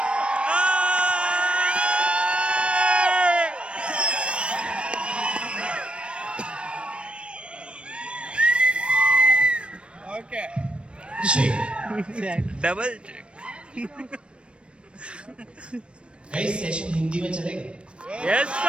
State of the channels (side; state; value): left; late; 0.059 ms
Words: Okay double check. कई session Hindi में चलेगा? Yes